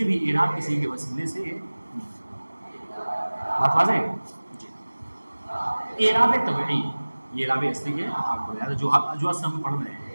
بھی اعراب کسی کے وسیلے سے, بات واضح ہے جی. اعراب طبعی یہ اعراب اصلی ہے, آپ کو یاد ہے جو اصل ہم پڑھ رہے ہیں.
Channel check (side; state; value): both; inverted; correlation -1.00